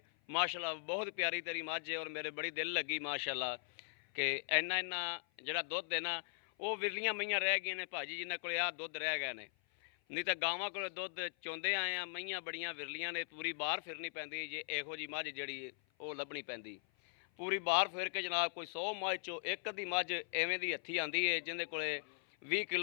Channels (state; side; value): silent; right; 51 dB below the other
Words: ਮਾਸ਼ਾਅੱਲਾ ਬਹੁਤ ਪਿਆਰੀ ਤੇਰੀ ਮੱਝ ਹੈ ਔਰ ਮੇਰੇ ਬੜੀ ਦਿਲ ਲੱਗੀ ਮਾਸ਼ਾਅੱਲਾ ਕਿ ਇੰਨਾ ਜਿਹੜਾ ਦੁੱਧ ਹੈ ਨਾ, ਉਹ ਵਿਰਲੀਆਂ ਮਈਆਂ ਰਹਿ ਗਈਆਂ ਨੇ ਭਾਜੀ ਜਿਨ੍ਹਾਂ ਕੋਲ ਆਹ ਦੁੱਧ ਰਹਿ ਗਏ ਨੇ। ਨਹੀਂ ਤਾਂ ਗਾਵਾਂ ਕੋਲ ਦੁੱਧ ਚੋਂਦੇ ਆਏ ਆ, ਮਈਆਂ ਬੜੀਆਂ ਵਿਰਲੀਆਂ ਨੇ, ਪੂਰੀ ਬਾਹਰ ਫਿਰਨੀ ਪੈਂਦੀ ਜੇ ਇਹੋ ਜੀ ਮੱਝ ਜਿਹੜੀ ਉਹ ਲੱਭਣੀ ਪੈਂਦੀ। ਪੂਰੀ ਬਾਹਰ ਫਿਰ ਕੇ ਜਨਾਬ ਕੋਈ 100 ਮੱਝ ਚੋਂ ਇੱਕ ਅੱਧੀ ਮੱਝ ਐਵੇਂ ਦੀ ਹੱਥੀ ਆਂਦੀ ਹੈ ਜਿਹਦੇ ਕੋਲੇ 20